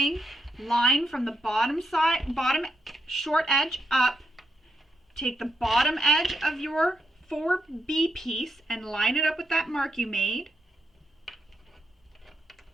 line from the bottom side, bottom short edge up. Take the bottom edge of your 4B piece and line it up with that mark you made.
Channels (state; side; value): normal; both; correlation 0.81